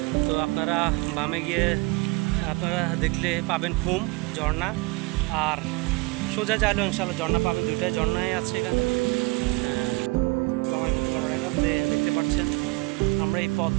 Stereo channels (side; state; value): left; quieter; 25.6 dB